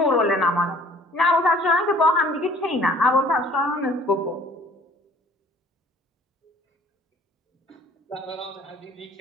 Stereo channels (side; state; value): both; normal; correlation 0.53